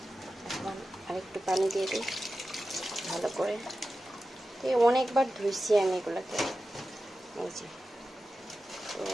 এখন আরেকটু পানি দিয়ে দিই ভালো করে। অনেকবার ধুইছি আমি এগুলাকে। এই যে, তো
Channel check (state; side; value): normal; both; correlation 0.92